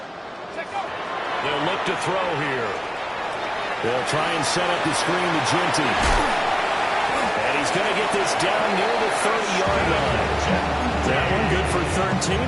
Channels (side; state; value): both; identical; correlation 1.00